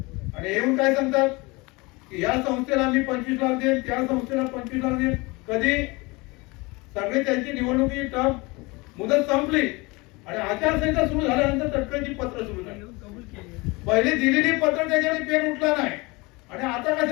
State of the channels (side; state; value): right; quieter; 24.9 dB